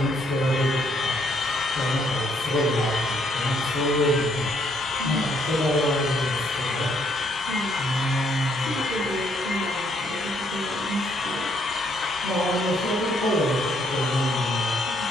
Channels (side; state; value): both; normal; correlation 0.69